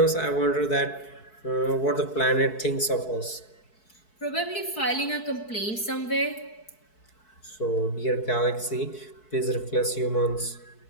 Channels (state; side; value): late; right; 4.6 ms